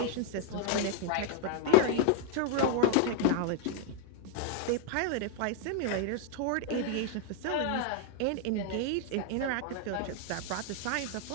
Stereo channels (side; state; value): both; different; correlation 0.00